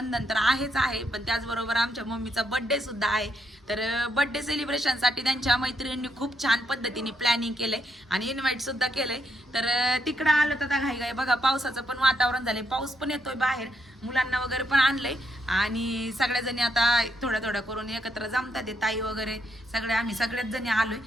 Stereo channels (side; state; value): both; normal; correlation 0.77